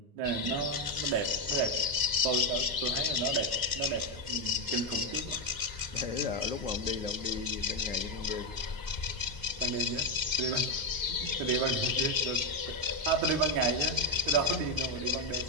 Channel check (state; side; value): late; left; 9.6 ms